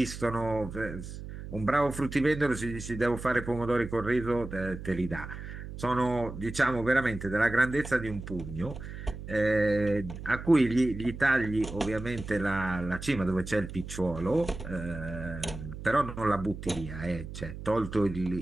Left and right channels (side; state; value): right; noise; hum, 10 dB below the sound